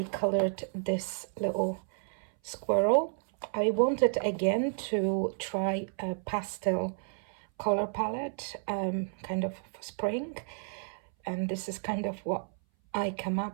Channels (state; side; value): silent; left; 57 dB below the other